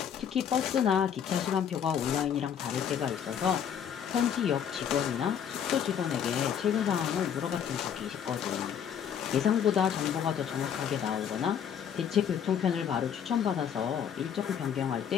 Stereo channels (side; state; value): right; quieter; 8.5 dB